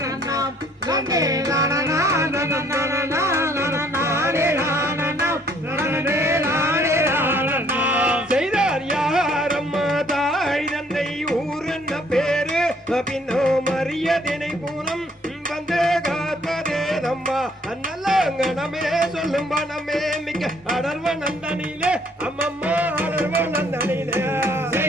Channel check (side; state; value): both; normal; correlation 0.63